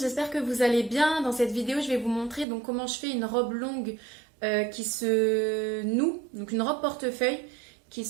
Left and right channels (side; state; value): left; drops out; at 2.5 s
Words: que vous allez bien. Dans cette vidéo, je vais vous montrer donc comment je fais une robe longue qui se noue, donc une robe portefeuille qui